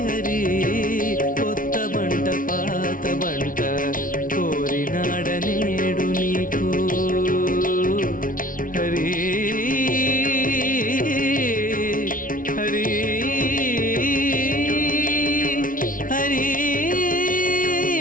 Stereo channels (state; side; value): late; right; 0.39 ms